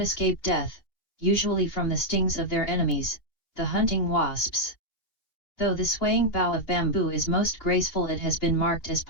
escape death, usually from the stings of their enemies, the hunting wasps. Though the swaying bough of bamboo is most graceful, it has been marked as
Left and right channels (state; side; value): late; right; 2.8 ms